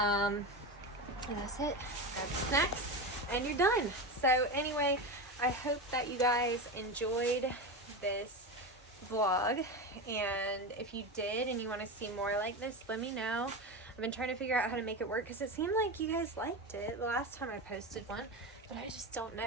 that's it. Grab the snacks, and you're done. So anyway, I hope that you guys enjoyed this vlog, and if you did and you want to see more like this, let me know. I've been trying to figure out how to make it work because it seemed like you guys liked it the last time I posted one, but I just don't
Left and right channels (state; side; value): normal; both; correlation 0.20